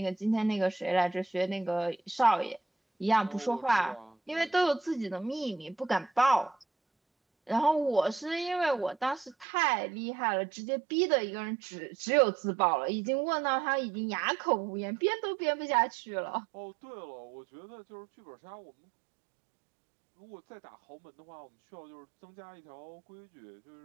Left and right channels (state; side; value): drops out; left; at 9.5 s